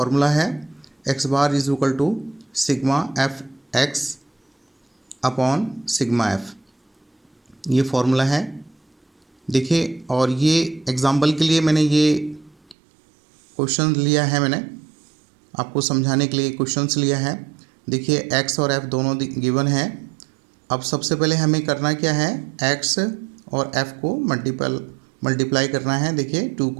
है, x bar is equal to sigma F X upon sigma F, ये फॉर्मूला है। देखिए, और ये एग्जाम्पल के लिए मैंने ये क्वेश्चन लिया है, मैंने आपको समझाने के लिए क्वेश्चंस लिया है। देखिए, एक्स और एफ दोनों गिवन है। अब सबसे पहले हमें करना क्या है, एक्स और एफ को मल्टीप्लाई करना है। देखिए, 2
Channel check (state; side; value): drops out; left; at 12.8 s